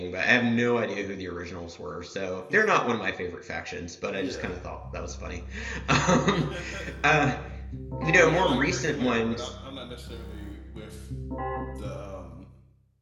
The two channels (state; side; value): identical; both; correlation 1.00